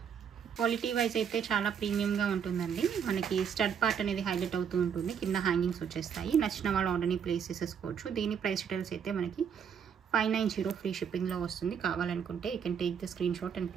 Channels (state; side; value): quieter; left; 7.5 dB